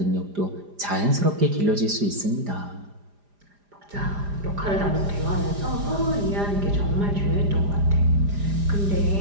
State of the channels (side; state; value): left; late; 4.9 ms